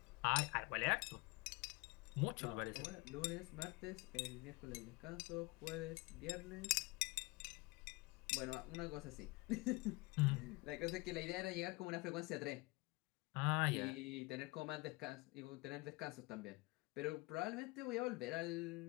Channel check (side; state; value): right; quieter; 24.5 dB